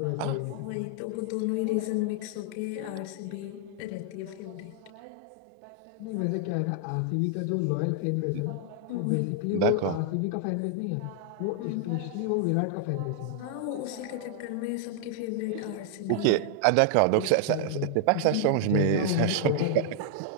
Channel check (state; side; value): different; both; correlation -0.01